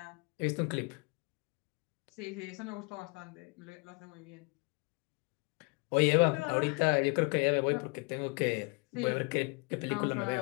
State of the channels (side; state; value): right; quieter; 30.9 dB